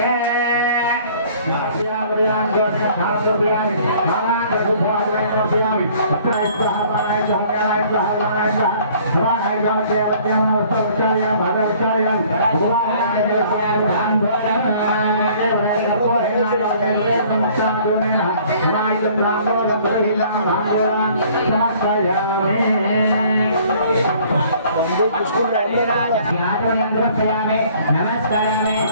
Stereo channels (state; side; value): inverted; both; correlation -0.56